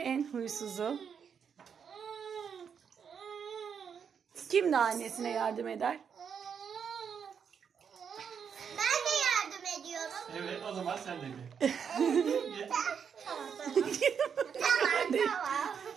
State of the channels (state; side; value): quieter; left; 7.1 dB